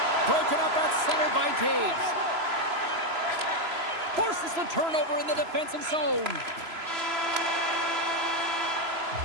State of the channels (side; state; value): left; late; 3.0 ms